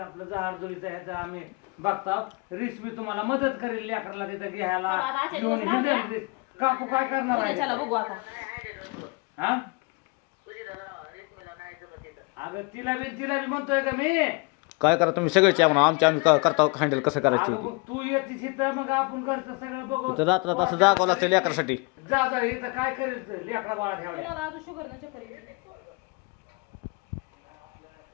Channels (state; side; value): quieter; right; 29.2 dB